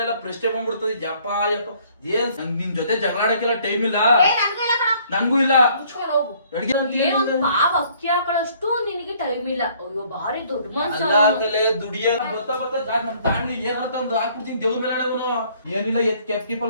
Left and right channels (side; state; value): both; inverted; correlation -0.61